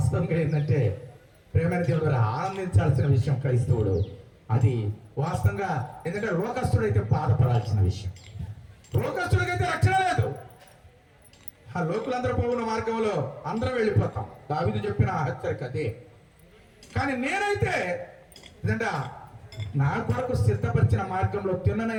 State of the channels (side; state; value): both; identical; correlation 1.00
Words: ఏంటంటే ప్రేమైన దేవుడు ఆనందించాల్సిన విషయం క్రైస్తవుడు. అది వాస్తవంగా ఎందుకంటే లోకస్తుడైతే బాధపడాల్సిన విషయం. లోకస్తుడికైతే రక్షణ లేదు. ఆ లోకులందరూ పోవున్న మార్గంలో అందరం వెళ్ళిపోతాం. దావీదు చెప్పిన హెచ్చరిక అదే. కానీ నేనైతే ఏంటంటే నా కొరకు సిద్ధపరిచిన మార్గంలో,